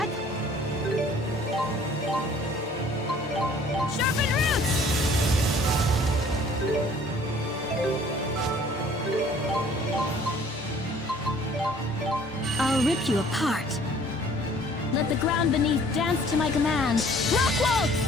Sharpen roots! I'll rip you apart. Let the ground beneath dance to my command. Rock waltz!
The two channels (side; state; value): both; normal; correlation 0.54